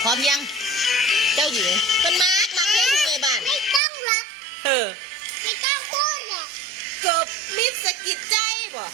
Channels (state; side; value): drops out; left; at 3.8 s